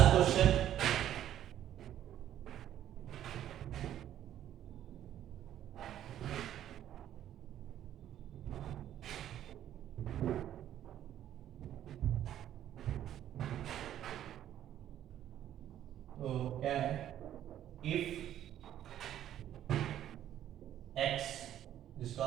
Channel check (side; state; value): left; quieter; 11.4 dB